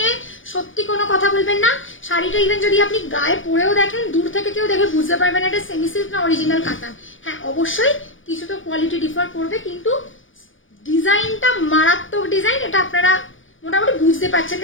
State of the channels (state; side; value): late; right; 0.57 ms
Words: সত্যি কোনো কথা বলবেন না। শাড়িটা ইভেন যদি আপনি গায়ে পরেও দেখেন, দূর থেকে কেউ দেখে বুঝতে পারবেন এটা সেমি সিল্ক না অরিজিনাল কাতান। হ্যাঁ অবশ্যই কিছু তো কোয়ালিটি ডিফার করবে, কিন্তু ডিজাইনটা মারাত্মক ডিজাইন। এটা আপনারা মোটামুটি বুঝতে পারছেন,